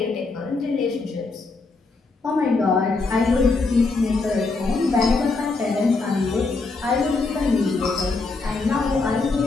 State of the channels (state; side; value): quieter; right; 3.9 dB